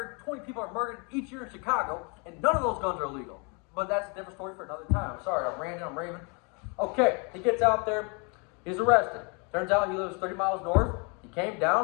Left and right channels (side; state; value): right; quieter; 33.6 dB